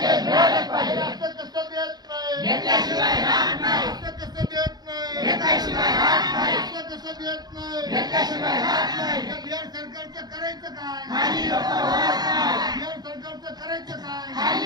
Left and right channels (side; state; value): left; late; 0.19 ms